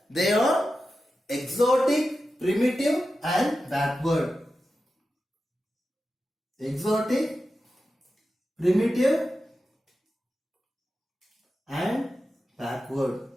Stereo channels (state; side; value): normal; both; correlation 0.91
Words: they are exotic, primitive and backward. Exotic, primitive and backward.